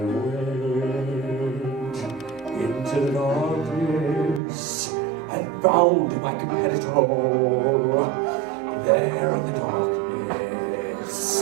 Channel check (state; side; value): drops out; left; at 4.4 s